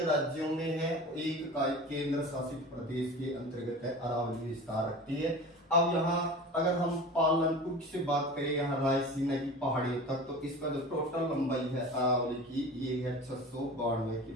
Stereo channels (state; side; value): normal; both; correlation 0.35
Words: राज्यों में है, एक का केंद्र शासित प्रदेश के अंतर्गत है, अरावली विस्तार रखती है। अब यहाँ अगर हम पालनपुर से बात करें यहाँ रायसीना की पहाड़ियों तक, तो इसका जो टोटल लंबाई है अरावली की ये है 692